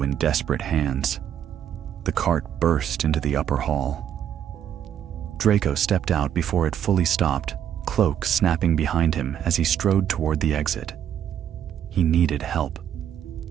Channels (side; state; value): left; quieter; 9.7 dB